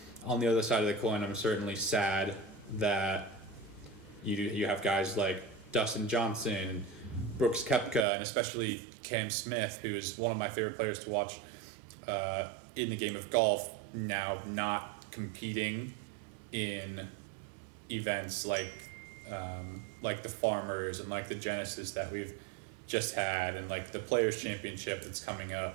on the other side of the coin, I'm certainly sad that you have guys like Dustin Johnson, Brooks Koepka, and especially Cam Smith, who is one of my favorite players to watch in the game of golf, now not competing in events like the Farmers and like the Genesis that we've just had and like the Players Championship that's coming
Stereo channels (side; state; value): left; drops out; at 8.1 s